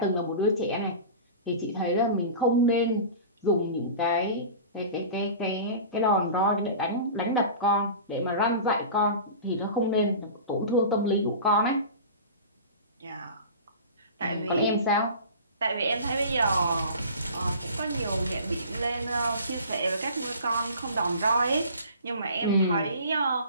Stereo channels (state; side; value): inverted; both; correlation -0.37